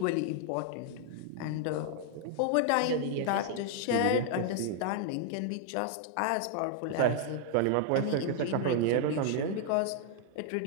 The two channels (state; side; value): different; both; correlation 0.00